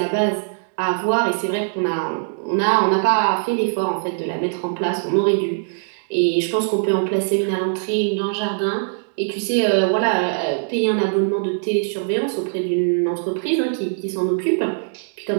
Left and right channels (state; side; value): silent; left; digital silence